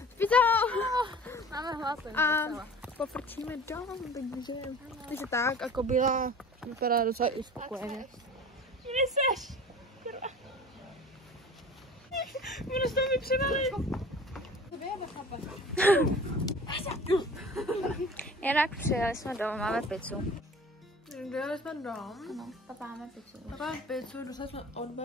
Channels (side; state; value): both; normal; correlation 0.42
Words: Máme hlad. A pofrčíme dom, takže tak a kobila vypadá docela i spokojeně. Kde seš? Budu s toho vypřevalit. Jinak přijeli jsme domů, máme pizzu. Dojeli jsme dom. Ano, papa máme pizzu. Máme pizzu, dostali jsme od